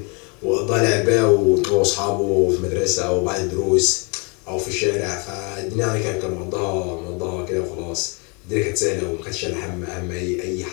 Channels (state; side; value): quieter; right; 33.0 dB